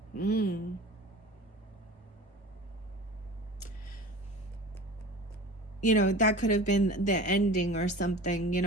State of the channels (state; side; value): normal; both; correlation 0.37